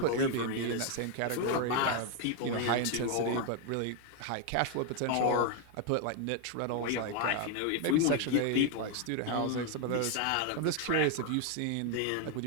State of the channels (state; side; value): different; both; correlation 0.00